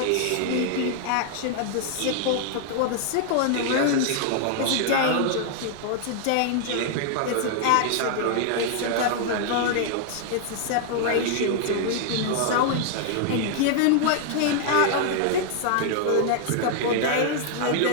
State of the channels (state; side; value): different; both; correlation 0.00